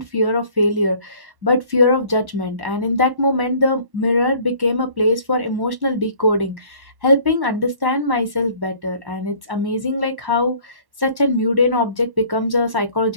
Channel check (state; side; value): late; left; 1.1 ms